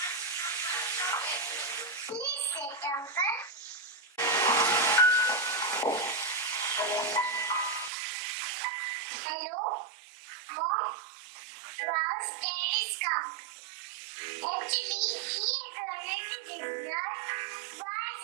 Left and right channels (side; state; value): left; drops out; at 7.9 s